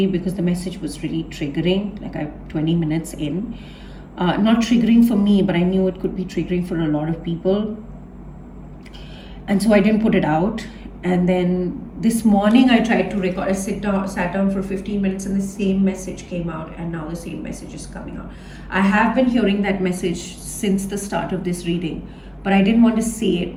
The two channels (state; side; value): identical; both; correlation 1.00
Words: because the message was really triggering, like 20 minutes in. Not triggering for me, but I knew it could be triggering for a lot of people. And so I didn't put it out. And then this morning I tried to record, I sat down for 15 minutes and the same message came out, and now the same message is coming out. I have been hearing that message since the start of this reading, but I didn't want to say